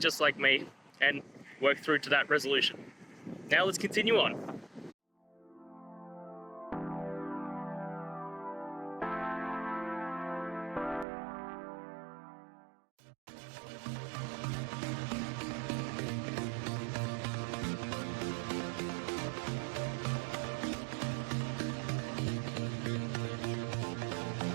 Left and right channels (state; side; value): drops out; left; at 11.1 s